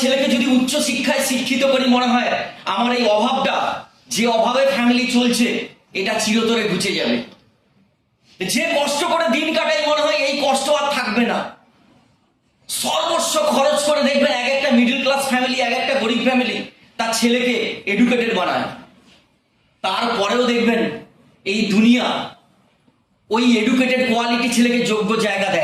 যদি উচ্চ শিক্ষায় শিক্ষিত করি, মনে হয় আমার এই অভাবটা, যে অভাবে ফ্যামিলি চলছে, এটা চিরতরে ঘুচে যাবে। যে কষ্ট করে দিন কাটাই, মনে হয় এই কষ্ট আর থাকবে না। সর্বস্ব খরচ করে দেখবেন এক একটা মিডল ক্লাস ফ্যামিলি, এক একটা গরিব ফ্যামিলি তার ছেলেকে এডুকেটেড বানায়। তারপরেও দেখবেন এই দুনিয়া ওই এডুকেটেড কোয়ালিটি ছেলেকে যোগ্য জায়গা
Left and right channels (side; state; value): both; identical; correlation 1.00